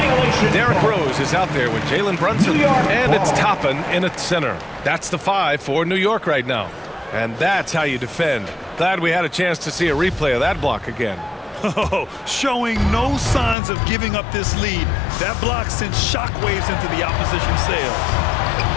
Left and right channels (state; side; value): drops out; right; at 13.6 s